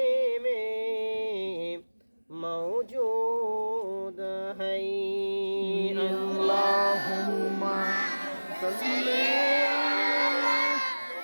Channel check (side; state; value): both; inverted; correlation -1.00